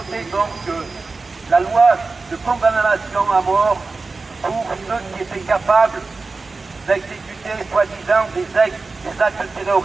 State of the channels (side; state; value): left; quieter; 3.9 dB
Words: donc la loi de condamnation à mort pour ceux qui étaient capables d'exécuter soi-disant des actes